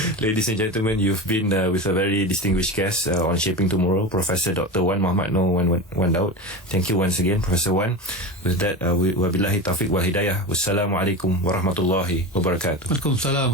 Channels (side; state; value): both; normal; correlation 0.25